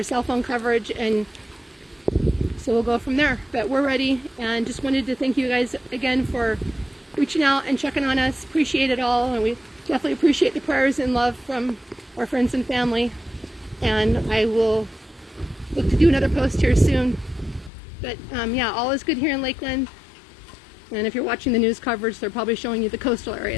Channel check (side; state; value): right; drops out; at 17.7 s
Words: cell phone coverage, and so we'll go from there. But we're ready, and just wanted to thank you guys again for reaching out and checking on us. Appreciate it all, and we definitely appreciate the prayers and love from our friends and family. And I will look to do another post here soon. But yeah, all is good here in Lakeland. And if you're watching the news coverage, they're probably showing you the coastal